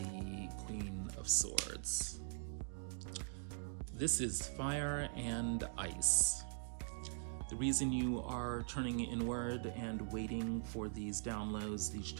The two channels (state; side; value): silent; left; digital silence